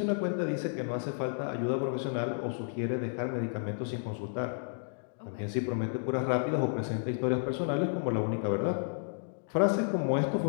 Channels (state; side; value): silent; right; digital silence